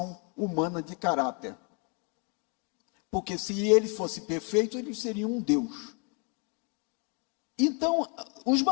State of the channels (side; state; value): right; quieter; 35.1 dB